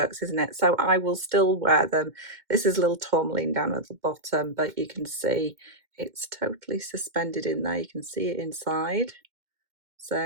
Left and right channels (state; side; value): late; left; 2.1 ms